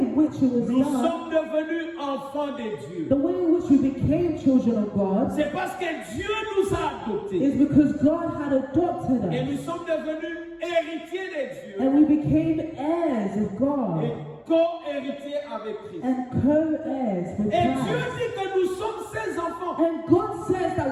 which it was nous done, sommes devenus enfants de Dieu. the way in which we became children of God, C'est parce que Dieu nous a adoptés is because God had adopted et us nous sommes devenus héritiers de Dieu and we became heirs of et God co-héritiers avec Christ. and co-heirs with Et Dieu Christ. dit que nous sommes ses enfants. And God says that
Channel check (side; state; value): both; identical; correlation 1.00